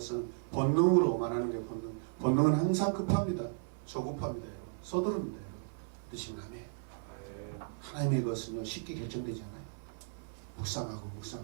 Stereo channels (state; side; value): silent; left; 54 dB below the other